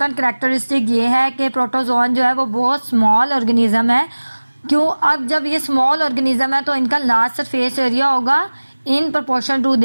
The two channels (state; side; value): inverted; both; correlation -1.00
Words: करैक्टरिस्टिक ये है कि प्रोटोजोन जो है वो बहुत स्मॉल ऑर्गेनिज्म है। क्यों, अब जब ये स्मॉल ऑर्गेनिज्म है तो इनका लार्ज सरफेस एरिया होगा in proportion to